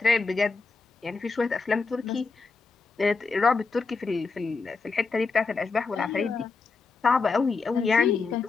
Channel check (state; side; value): quieter; right; 4.3 dB